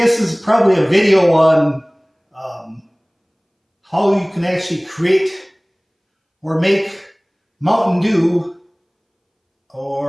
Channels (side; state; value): both; identical; correlation 1.00